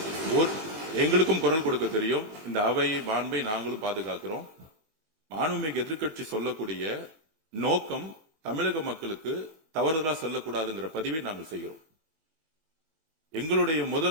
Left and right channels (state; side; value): late; left; 21 ms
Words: எங்களுக்கும் குரல் கொடுக்க தெரியும். இந்த அவை மாண்பை நாங்களும் பாதுகாக்கிறோம். மாண்புமிகு எதிர்க்கட்சி சொல்லக்கூடிய நோக்கம் தமிழக மக்களுக்கு தவறுதலா சொல்லக்கூடாதுங்கிற பதிவை நாங்கள் செய்கிறோம். எங்களுடைய